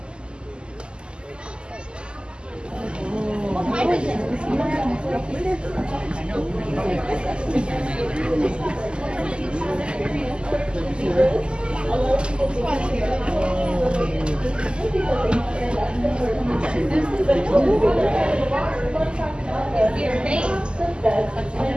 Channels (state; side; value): late; left; 0.049 ms